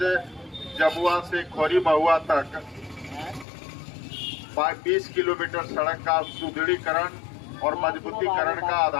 जबुआ से खोरी महुआ तक 20 किलोमीटर सड़क का सुदृढ़ीकरण और मजबूतीकरण का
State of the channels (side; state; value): right; drops out; at 3.5 s